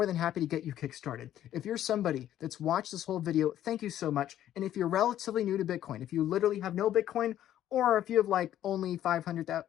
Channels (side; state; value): right; quieter; 11.9 dB